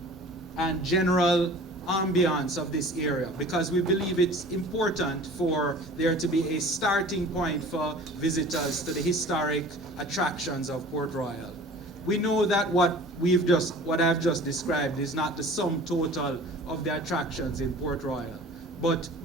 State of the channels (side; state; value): both; normal; correlation 0.44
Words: and general ambiance of this area, because we believe it's important for there to be a starting point for visitors to the historic attractions of Port Royal. We know that what I've just described is not the sum total of the attractions in Port Royal, but